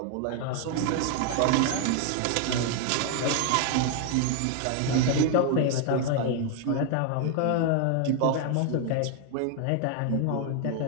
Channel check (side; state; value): both; different; correlation 0.00